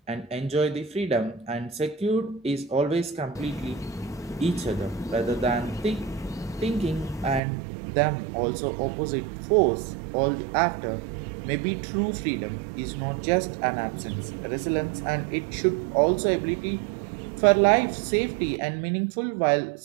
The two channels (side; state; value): left; drops out; at 7.4 s